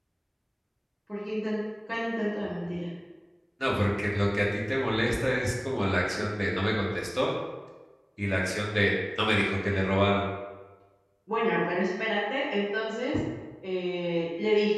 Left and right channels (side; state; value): both; identical; correlation 1.00